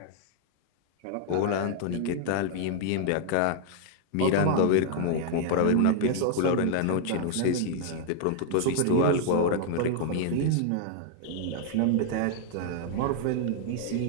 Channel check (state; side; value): different; both; correlation 0.00